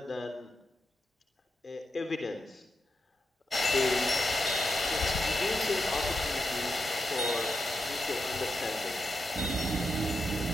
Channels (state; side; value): normal; both; correlation 0.86